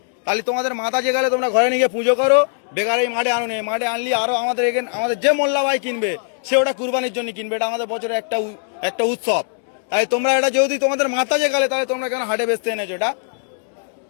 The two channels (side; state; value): right; silent; 64 dB below the other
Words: তাহলে তোমাদের মাথা যে গেলে তোমরা ঘরে নিয়ে পুজো করো, বেকার এই মাঠে আনুনি। মাঠে আনলি আরো আমাদের এখানে আমাদের যে মোল্লা ভাই কিনবে সে ওটা কুরবানির জন্য কিনবে, এটা আমাদের বছরের একটা উৎসব। তাই তোমরা এটা যেহেতু তোমাদের মাথা যে গেলে, তাহলে তোমরা কেন হাটে বেচতে এনেছো? এটা